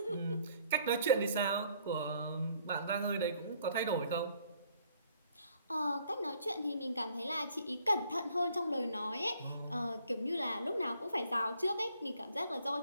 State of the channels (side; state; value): both; inverted; correlation -0.63